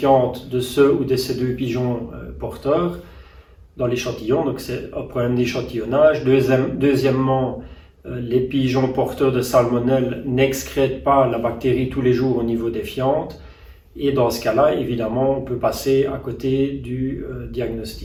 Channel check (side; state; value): both; identical; correlation 1.00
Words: de ceux ou de ces deux pigeons porteurs dans l'échantillon, donc c'est un problème d'échantillonnage. Deuxièmement, les pigeons porteurs de salmonelle n'excrètent pas la bactérie tous les jours au niveau des fientes, et dans ce cas-là, évidemment, on peut passer à côté du